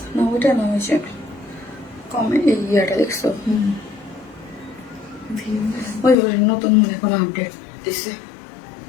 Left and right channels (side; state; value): right; drops out; at 6.2 s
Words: না, ওইটা না, হয়েছে কমে এই ইয়েটা দেখছো? ওই নতুন মনে কোনো আপডেট দিছে,